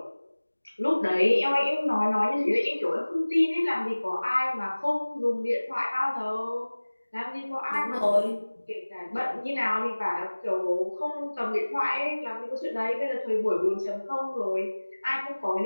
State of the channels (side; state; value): both; inverted; correlation -1.00